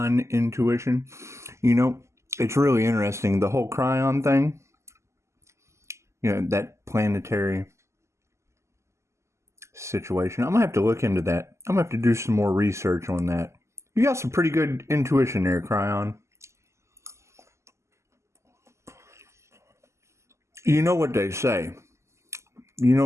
intuition. You know, it's really interesting. The whole cryon thing, that planetary situation. I'm going to have to look into that. I'm going to have to do some more research on that. You got some pretty good intuition there, Cryon. You know what they say.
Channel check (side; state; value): left; late; 0.13 ms